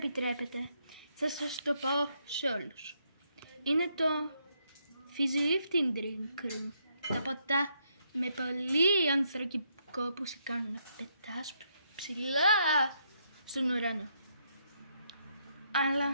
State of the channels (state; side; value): inverted; both; correlation -0.75